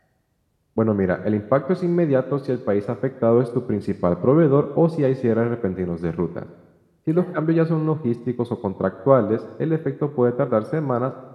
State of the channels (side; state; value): both; identical; correlation 1.00